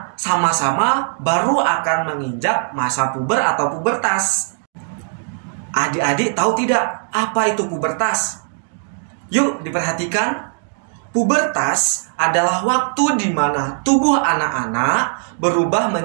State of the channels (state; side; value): silent; left; digital silence